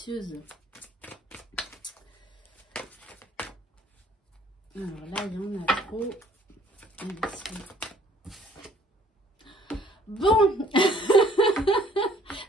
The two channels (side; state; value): both; normal; correlation 0.59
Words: Alors là, il y en a trop. Bon.